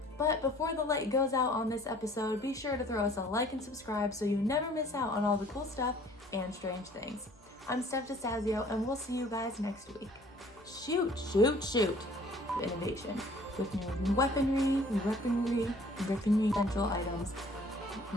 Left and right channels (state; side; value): normal; both; correlation 0.54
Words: But before the light goes out on this episode, be sure to throw us a like and subscribe so you never miss out on all the cool stuff and strange things. I'm Steph DeStazio, and we'll see you guys next week. Shoot! Innovation. With new weaponry, essential items.